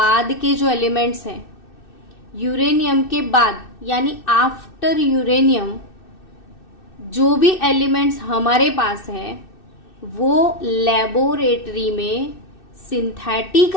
के जो एलिमेंट्स हैं, यूरेनियम के बाद यानी आफ्टर यूरेनियम जो भी एलिमेंट्स हमारे पास है, वो लेबोरेटरी में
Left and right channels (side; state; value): right; late; 2.6 ms